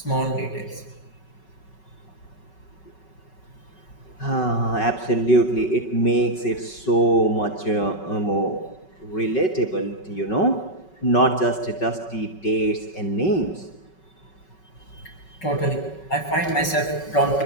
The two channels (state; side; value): late; right; 5.3 ms